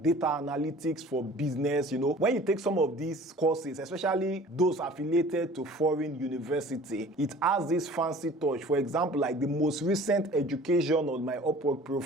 analytics for business. When you take some of these courses, especially those affiliated to foreign university, it has this fancy touch. For example, like the most recent education on my Upwork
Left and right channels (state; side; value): normal; both; correlation 0.47